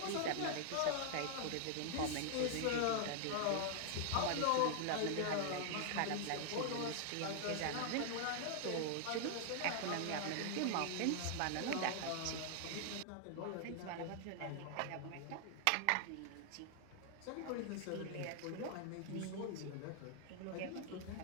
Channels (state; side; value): different; both; correlation 0.00